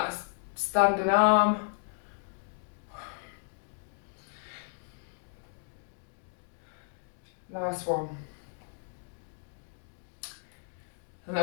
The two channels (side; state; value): right; silent; 55 dB below the other